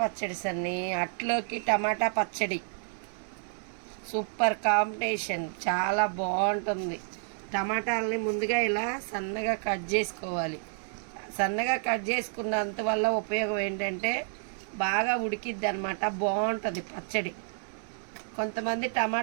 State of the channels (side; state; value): left; silent; 58 dB below the other